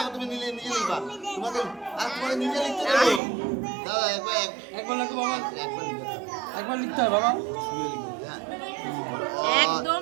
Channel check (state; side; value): drops out; left; at 3.2 s